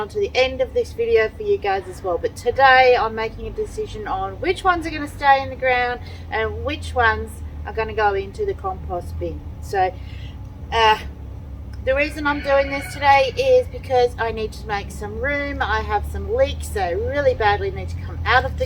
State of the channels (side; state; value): both; identical; correlation 1.00